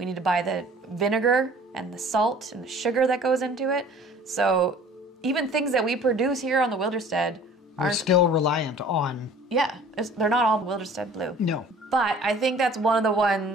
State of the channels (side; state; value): both; normal; correlation 0.49